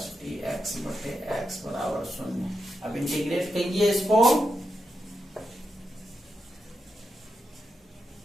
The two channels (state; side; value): normal; both; correlation 0.86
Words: dx बटे x बराबर 0। अब इंटीग्रेट कीजिए इसको,